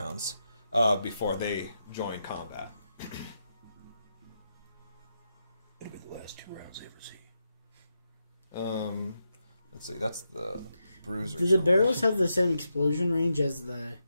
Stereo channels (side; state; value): both; inverted; correlation -0.85